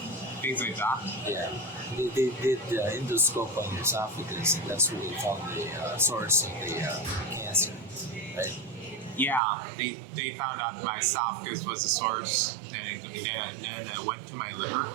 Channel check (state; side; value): drops out; left; at 9.4 s